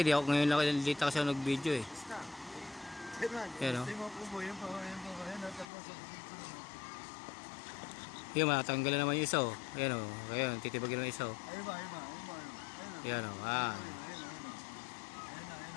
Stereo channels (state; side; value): drops out; right; at 5.7 s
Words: di ako ngayon lang dito kasi ako nag-video eh. Ayun o. Yun, matatanggal na naman yung isa o. Ayun o. Ayun, titibagin naman yung isa o. Ayun o.